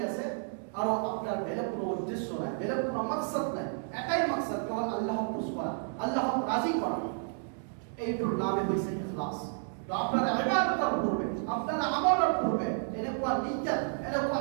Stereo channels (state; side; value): silent; left; 57 dB below the other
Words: আছে, আৰু আপনার বেলেগ কোনো উদ্দেশ্য নাই, বেলেগ কোনো মাকসাদ নাই। এটাই মাকসাদ, কেবল আল্লাহক খুশ করা, আল্লাহক রাজি করা। এইটোর নামে হইছে ইখলাস। তো আপনার ইবাদতের পূর্বে, আপনার আমলের পূর্বে এনেকুৱা নিয়ত, এনেকুৱা